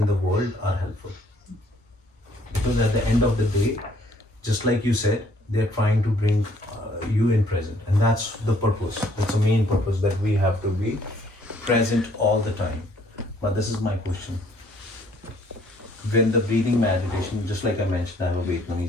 the world are helpful. Because at the end of the day, just like you said, they're trying to bring you in present. And that's the purpose. That's the main purpose, that we have to be present all the time. But this is my question. When the breathing meditation, just like I mentioned, I have a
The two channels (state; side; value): normal; both; correlation 0.63